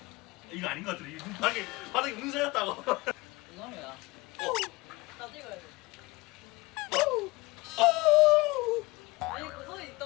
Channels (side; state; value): right; quieter; 22.9 dB